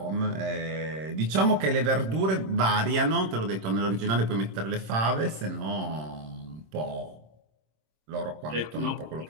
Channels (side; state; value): left; late; 26 ms